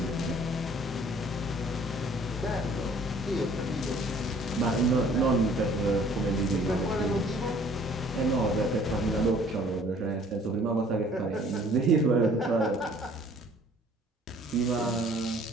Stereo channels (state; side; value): normal; both; correlation 0.55